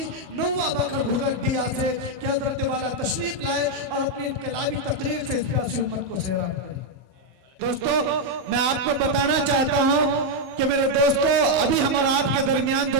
نوا بکر گھگٹیا سے کہ حضرت والا تشریف لائے اور اپنی انقلابی تقریر سے اس پیاسی امت کو سیراب کرے۔ دوستو، میں آپ کو بتانا چاہتا ہوں کہ میرے دوستو ابھی ہم اور آپ کے درمیان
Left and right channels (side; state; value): left; late; 16 ms